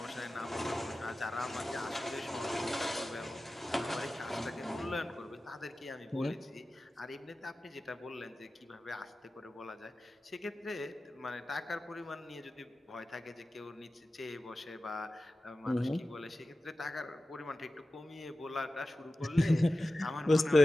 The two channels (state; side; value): normal; both; correlation 0.94